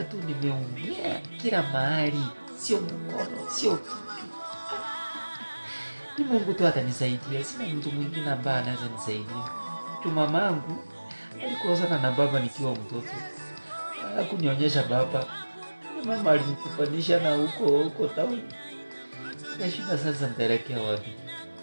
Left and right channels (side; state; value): both; inverted; correlation -1.00